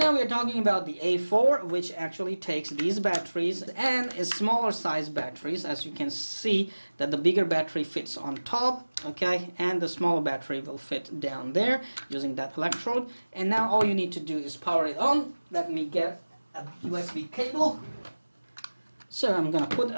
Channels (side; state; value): both; inverted; correlation -1.00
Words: we are talking about the A4, which actually takes these batteries and is smaller size batteries. As you can see that the bigger battery fits on top, okay, and the smaller battery will fit down there using that electrode. And now all you need to do is power it on. Let me get a USB cable. So I'm gonna put